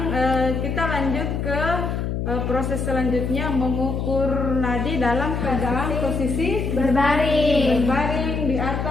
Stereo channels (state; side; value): noise; left; hum, 2 dB below the sound